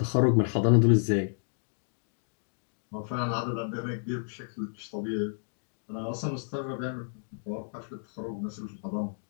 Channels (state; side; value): silent; right; digital silence